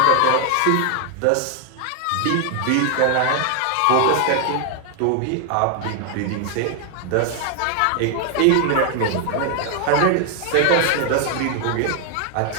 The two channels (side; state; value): both; different; correlation 0.00